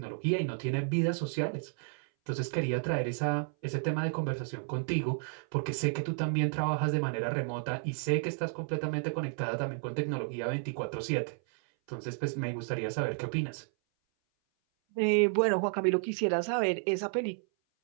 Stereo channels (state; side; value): silent; left; 57 dB below the other